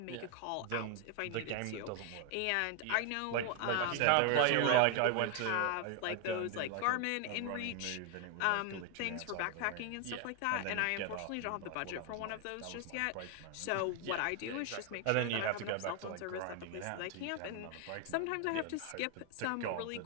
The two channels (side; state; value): both; different; correlation 0.01